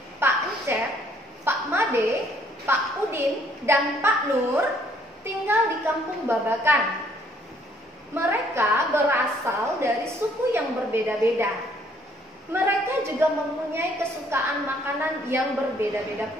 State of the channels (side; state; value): both; normal; correlation 0.64